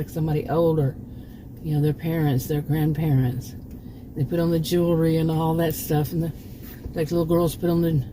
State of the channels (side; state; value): both; identical; correlation 1.00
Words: somebody older, their parents, their grandparents. They put on the jewelry and all that stuff, and like little girls put on